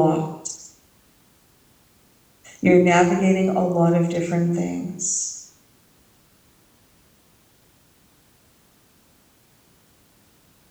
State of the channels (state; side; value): identical; both; correlation 1.00